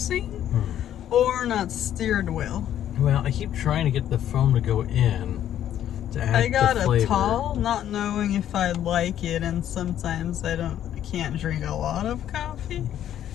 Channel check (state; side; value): quieter; right; 11.0 dB